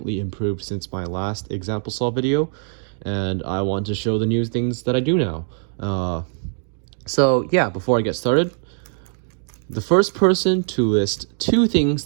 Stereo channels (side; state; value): left; silent; 64 dB below the other